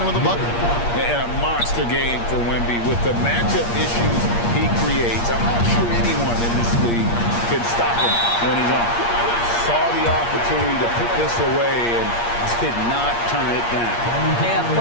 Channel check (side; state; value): right; late; 8.5 ms